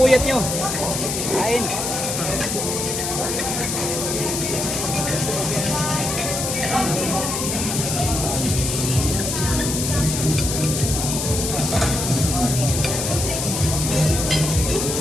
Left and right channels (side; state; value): left; noise; hiss, 2 dB below the sound